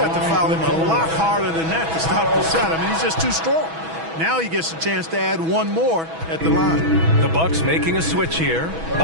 to foul him a lot harder than that to stop the shot. I mean, he's just too strong. Now he gets a chance to add one more at the line. The Bucks making a switch here.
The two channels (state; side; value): late; left; 6.1 ms